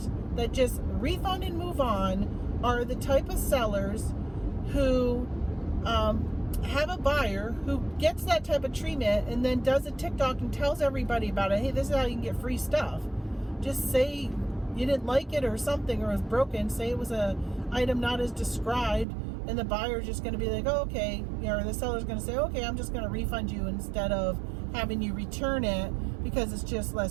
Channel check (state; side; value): drops out; left; at 19.1 s